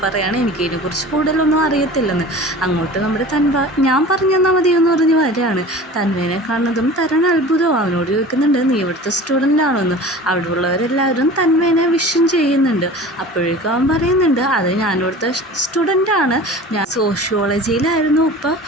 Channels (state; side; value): normal; both; correlation 0.39